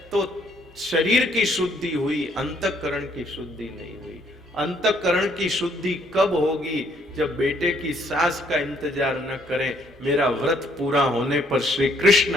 तो शरीर की शुद्धि हुई, अंतःकरण की शुद्धि नहीं हुई। अंतःकरण की शुद्धि कब होगी? जब बेटे की सास का इंतजार न करें, मेरा व्रत पूरा होने पर श्री कृष्ण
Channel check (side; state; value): both; normal; correlation 0.67